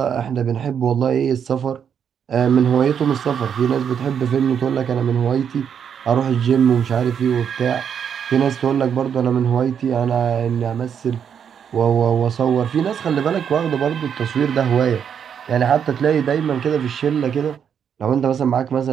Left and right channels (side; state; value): left; quieter; 7.9 dB